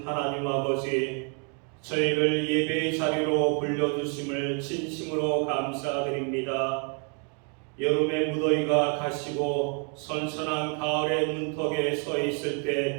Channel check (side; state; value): left; quieter; 38.2 dB